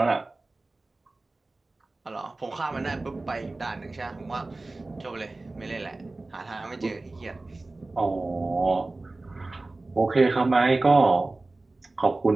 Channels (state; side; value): quieter; left; 3.1 dB